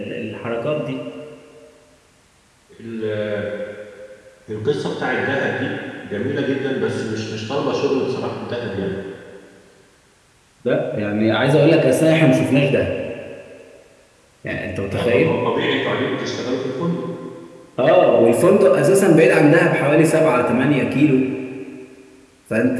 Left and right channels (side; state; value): both; identical; correlation 1.00